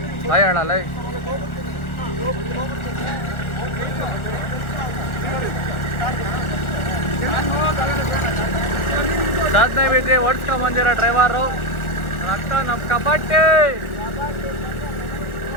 ಹಾಯ್ ಹೇಳಲ್ಲ. ಸಾಧನೆ ಬಿದ್ದು ಓಡಿಸ್ಕೊಂಡ್ ಬಂದಿರೋ ಡ್ರೈವರು ರಕ್ತ ನಮ್ಮ ಕಬಡ್ಡಿ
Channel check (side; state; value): right; late; 1.4 ms